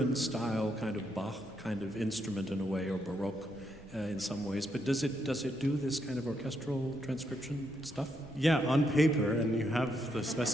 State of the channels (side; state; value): both; normal; correlation 0.78